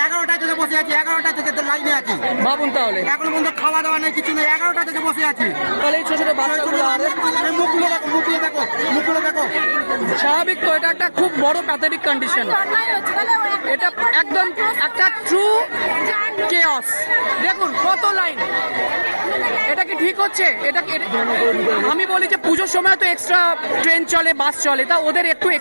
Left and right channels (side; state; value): both; inverted; correlation -1.00